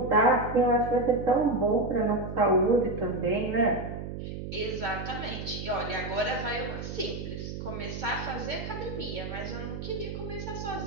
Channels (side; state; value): right; noise; hum, 7 dB below the sound